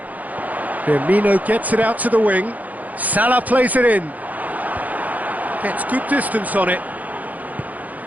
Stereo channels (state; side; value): late; left; 0.079 ms